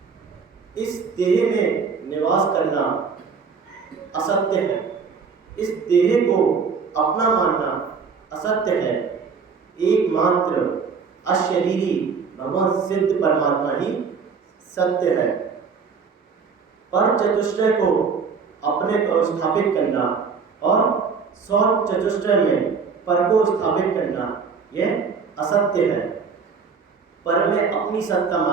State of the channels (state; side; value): quieter; left; 5.6 dB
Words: इस देह में निवास करना असत्य है, इस देह को अपना मानना असत्य है। एकमात्र अशरीरी भगवान सिद्ध परमात्मा ही सत्य है। पर चतुष्टय को अपने को स्थापित करना और सौ चतुष्टय में पर को स्थापित करना यह असत्य है। पर में अपनी सत्ता